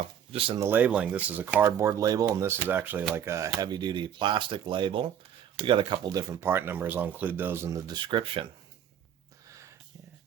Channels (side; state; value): left; quieter; 9.2 dB